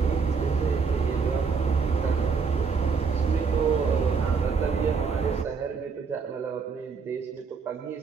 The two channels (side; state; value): left; quieter; 5.4 dB